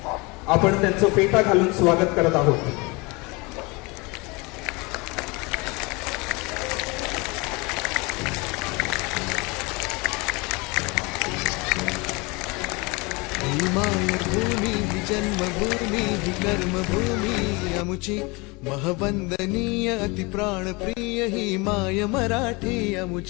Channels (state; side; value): quieter; right; 26.8 dB